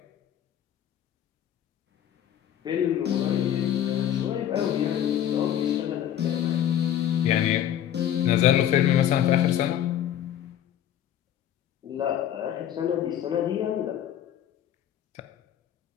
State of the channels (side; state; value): right; quieter; 10.8 dB